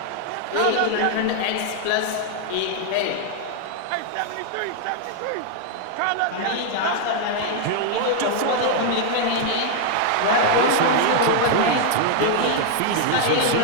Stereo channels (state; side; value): different; both; correlation 0.00